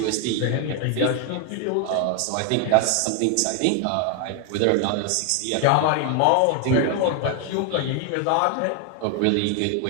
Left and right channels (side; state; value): both; different; correlation 0.00